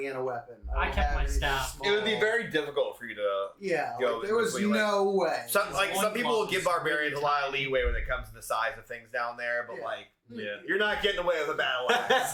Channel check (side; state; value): both; identical; correlation 1.00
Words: in a weapon. I don't kept have my anything staff. small. It would be very difficult for you to. Yeah, go like, there was between, no way. Some people will give barbarians a lot of tiny. leeway when it comes to the size of things down there, but yeah. you're not getting away with a battle axe.